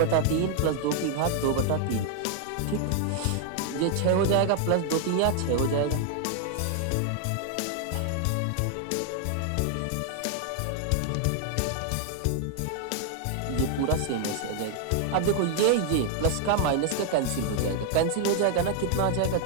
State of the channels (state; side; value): different; both; correlation 0.00